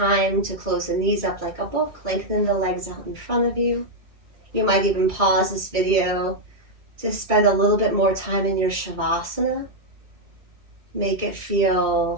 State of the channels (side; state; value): left; late; 2.3 ms